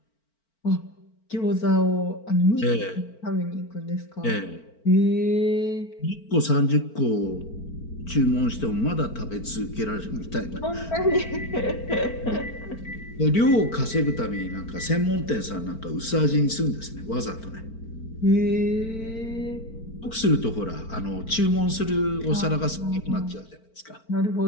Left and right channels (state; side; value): late; right; 4.4 ms